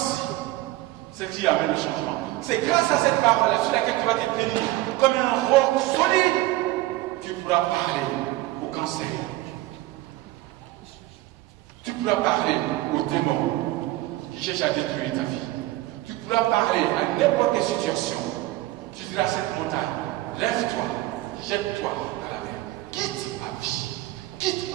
ce qui amène le changement. C'est grâce à cette parole sur laquelle tu vas te tenir comme un roc solide. Tu pourras parler au cancer. Tu pourras parler aux démons qui cherchent à détruire ta vie. Tu pourras parler à n'importe quelle situation. Tu diras à cette montagne, lève-toi, jette-toi à la mer. Quitte ma vie, quitte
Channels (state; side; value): quieter; left; 17.7 dB